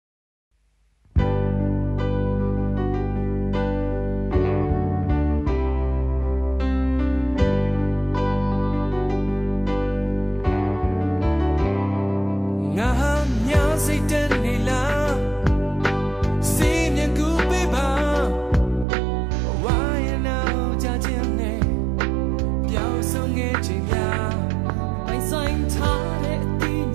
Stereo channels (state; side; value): drops out; left; at 18.9 s